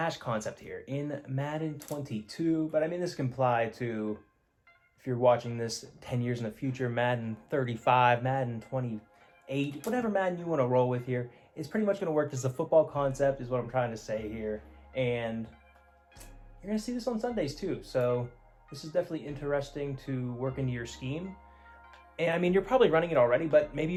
concept here in Madden 22, but I mean, this can apply to, if you're watching this 10 years in the future, Madden 35, Madden 28, whatever Madden you want to roll with here. It's pretty much going to work as a football concept is what I'm trying to say here. And you're going to see this on Sundays too. So this is definitely interesting to work into your scheme. And I mean, you're probably running it already, but maybe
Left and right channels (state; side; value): identical; both; correlation 1.00